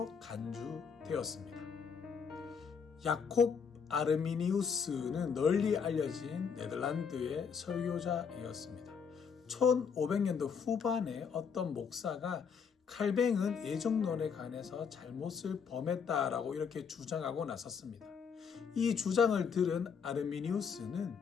간주되었습니다. 야콥 아르미니우스는 널리 알려진 네덜란드의 설교자이었습니다. 1500년도 후반에 어떤 목사가 칼뱅은 예정론에 관해서 잘못을 범했다라고 이렇게 주장하고 나섰습니다. 이 주장을 들은 아르미니우스는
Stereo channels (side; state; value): right; quieter; 6.4 dB